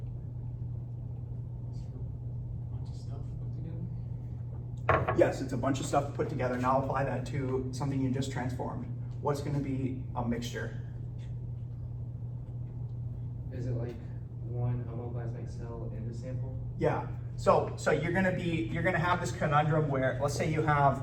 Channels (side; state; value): both; identical; correlation 1.00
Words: Yes, it's a bunch of stuff put together. Now apply that to something you just transformed. What's going to be a mixture? Is it like one homoplasmic cell in the sample? Yeah. So you're gonna have this conundrum where, let's say you